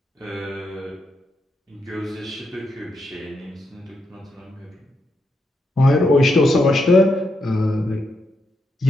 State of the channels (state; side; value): normal; both; correlation 0.82